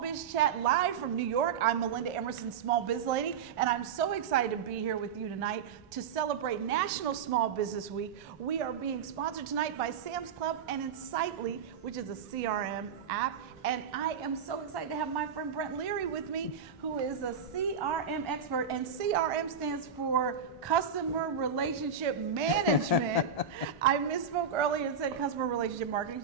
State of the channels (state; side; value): quieter; left; 6.5 dB